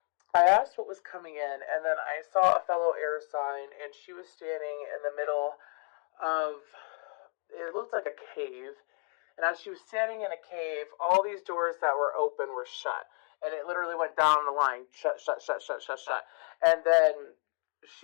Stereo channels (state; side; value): quieter; right; 37.1 dB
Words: I asked what was coming in, and then I saw a fellow air sign, and she was standing in the middle of, it looked like a cave. And as she was standing in a cave, all these doors that were open were shut. And it literally went down the line, shut, shut, shut, shut, shut, shut. And then